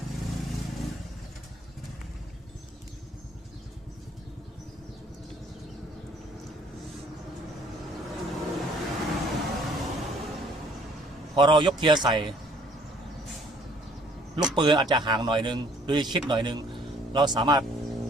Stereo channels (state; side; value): normal; both; correlation 0.59